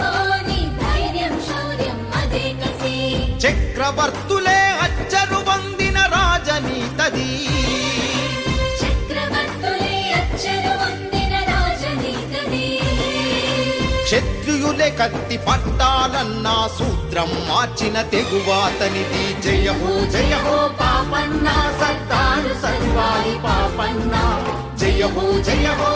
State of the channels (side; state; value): both; identical; correlation 1.00